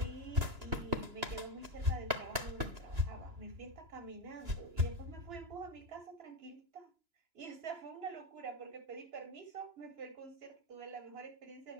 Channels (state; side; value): late; left; 2.9 ms